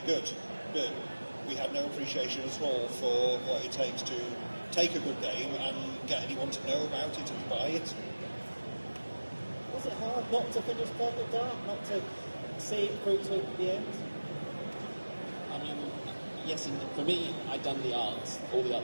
good. But we had no appreciation at all for what it takes to take a good game and get anyone to know about it and buy it. Was it hard not to finish Perfect Dark, not to see it through to the end? I mean, yes, and for me, I'd done the art, all the art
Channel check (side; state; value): both; inverted; correlation -1.00